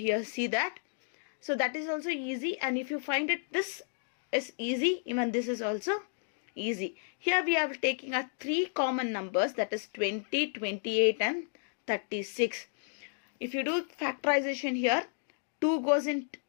that. So that is also easy. And if you find it, this is easy. Even this is also easy. Here we are taking our 3 common numbers, that is 20, 28 and 36. If you do factorization here, 2 goes in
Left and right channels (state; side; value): silent; right; digital silence